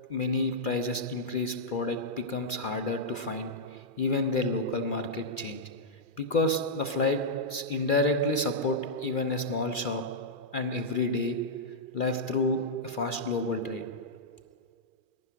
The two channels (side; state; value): right; late; 2.4 ms